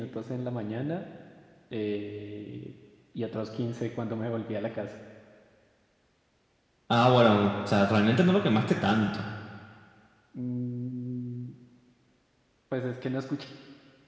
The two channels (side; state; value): both; identical; correlation 1.00